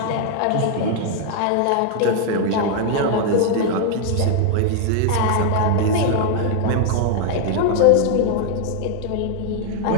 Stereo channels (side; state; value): both; different; correlation 0.00